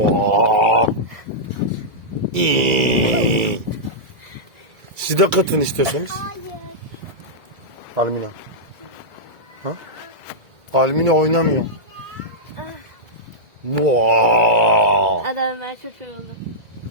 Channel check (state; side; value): late; left; 2.2 ms